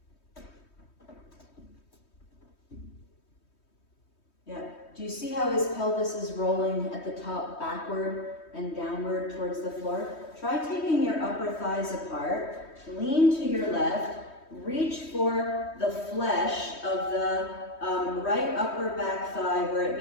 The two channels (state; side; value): late; right; 3.2 ms